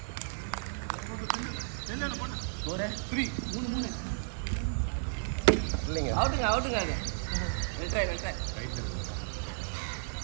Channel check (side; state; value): left; silent; digital silence